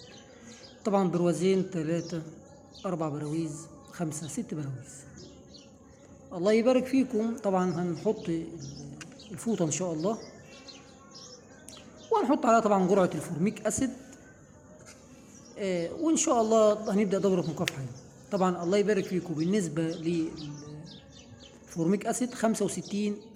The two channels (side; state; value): both; identical; correlation 1.00